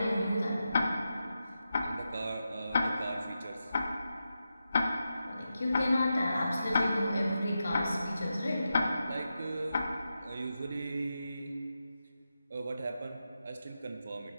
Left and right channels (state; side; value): inverted; both; correlation -0.89